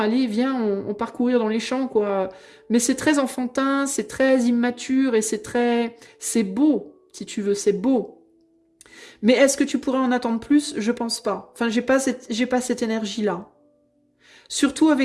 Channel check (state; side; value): identical; both; correlation 1.00